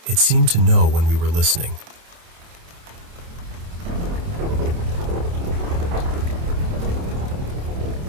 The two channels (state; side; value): late; left; 27 ms